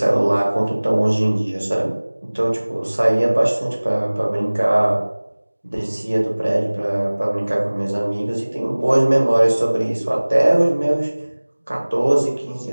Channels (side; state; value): both; inverted; correlation -1.00